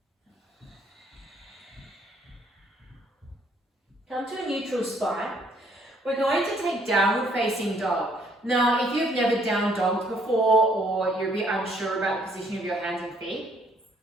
Come to a neutral spine. We're going to take downward facing dog. Now, if you've never down dogged before or you're a bit unsure about the position of your hands and feet,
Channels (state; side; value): normal; both; correlation 0.65